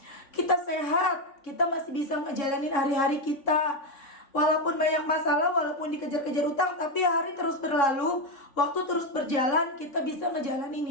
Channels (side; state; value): right; late; 3.5 ms